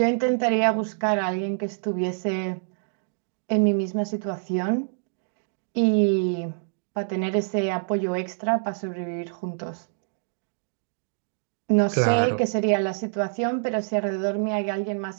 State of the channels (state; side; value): silent; left; digital silence